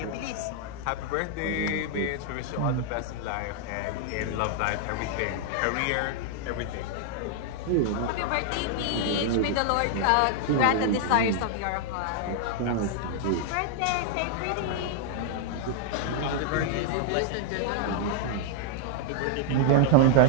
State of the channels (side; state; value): both; different; correlation 0.00